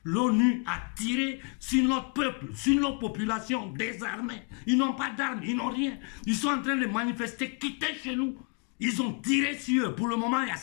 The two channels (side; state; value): right; quieter; 36.8 dB